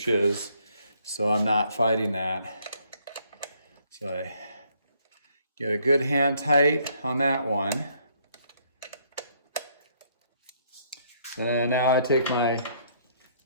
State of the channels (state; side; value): inverted; both; correlation -0.68